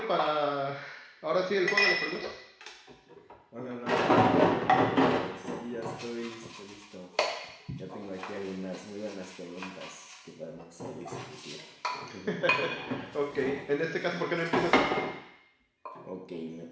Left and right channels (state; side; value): identical; both; correlation 1.00